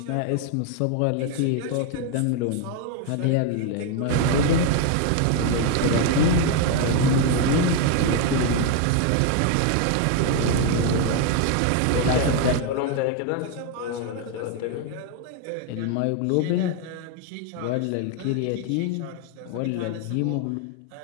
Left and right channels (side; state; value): both; different; correlation 0.01